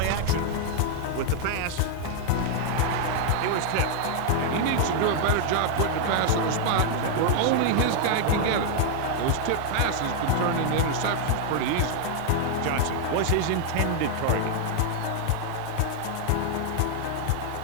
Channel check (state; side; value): different; both; correlation 0.00